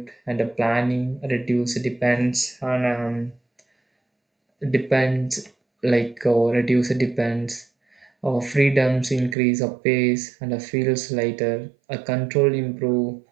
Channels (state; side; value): drops out; left; at 9.3 s